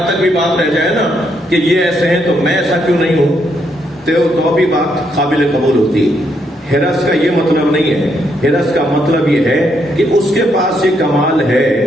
تک بھی بات رہ جائے نا کہ یہ ایسے ہیں تو میں ایسا کیوں نہیں ہوں، تو بھی بات قابل قبول ہوتی۔ حرص کا یہ مطلب نہیں ہے، حرص کا مطلب یہ ہے کہ اس کے پاس یہ کمال ہے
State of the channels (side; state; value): both; normal; correlation 0.76